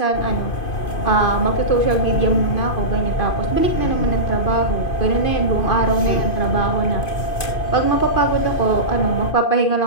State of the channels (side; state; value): right; late; 2.5 ms